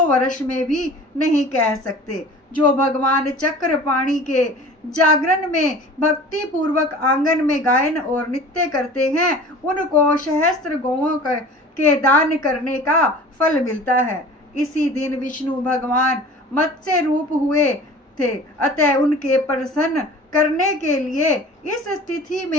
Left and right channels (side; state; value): both; normal; correlation 0.42